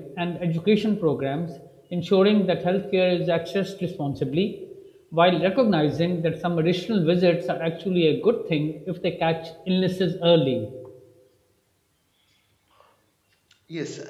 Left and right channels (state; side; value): identical; both; correlation 1.00